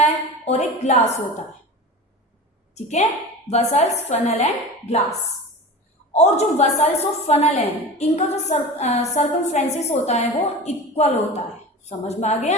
और एक ग्लास होता है। ठीक है, वेसल्स, फनल एंड ग्लास। और जो वेसल्स और फनल है, इनका जो सर्कमफ्रेंसेस होता है वो इक्वल होता है। समझ में आ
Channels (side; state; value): both; normal; correlation 0.32